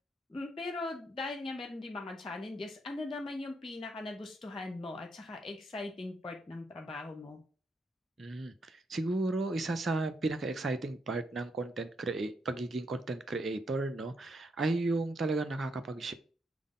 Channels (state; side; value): normal; both; correlation 0.77